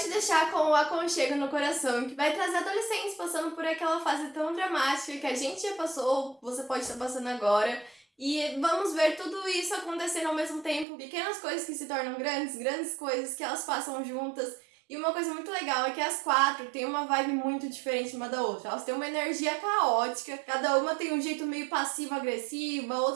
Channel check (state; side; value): drops out; left; at 10.9 s